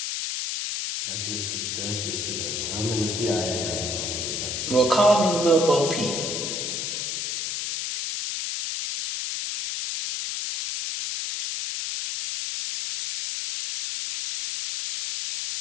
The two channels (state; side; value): noise; left; hiss, 2 dB below the sound